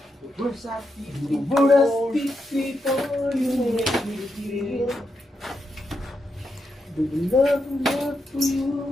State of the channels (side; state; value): both; normal; correlation 0.84